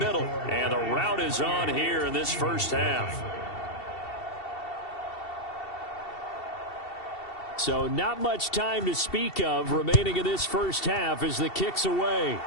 And the route is on here in this first half. So not much time to speak of remaining in this first half as the kick's away.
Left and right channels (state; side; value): late; right; 2.7 ms